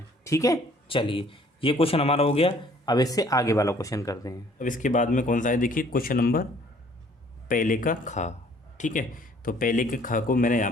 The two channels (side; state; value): both; normal; correlation 0.58